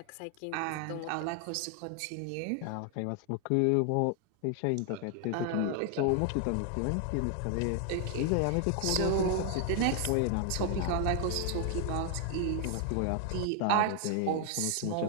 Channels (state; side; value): different; both; correlation 0.00